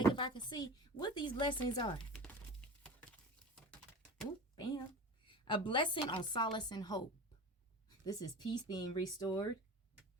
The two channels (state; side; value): normal; both; correlation 0.33